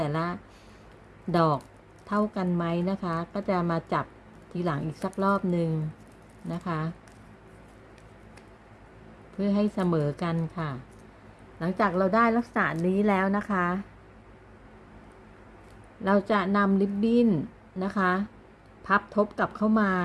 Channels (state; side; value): identical; both; correlation 1.00